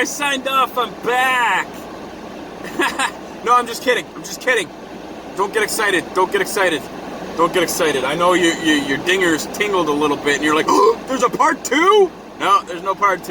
signed off, I'm back! No, I'm just kidding. Don't get excited. I know your dingers tingled a little bit, and you're like, oh, there's a part 2? No, there's no part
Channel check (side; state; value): both; identical; correlation 1.00